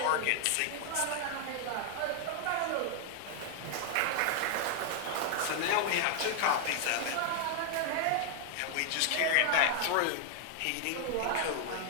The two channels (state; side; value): different; both; correlation 0.00